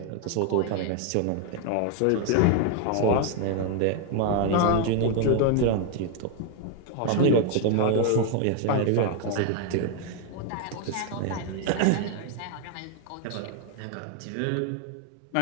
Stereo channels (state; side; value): different; both; correlation 0.01